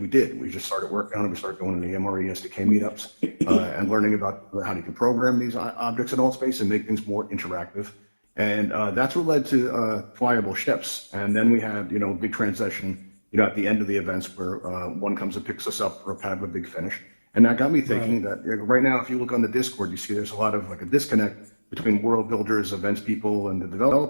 did. We just started working on it. We started going to the MRE SDK meetups and learning about how you can program these objects in all space and make things more interactive. And that's what led to flyable ships. And then we had, a big transition, at the end of the events where one comes and picks us up for kind of a big finish. And that got me thinking that right now, if you look on the Discord, you see there's a lot of like a disconnect between world builders, events people, and the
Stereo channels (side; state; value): both; inverted; correlation -1.00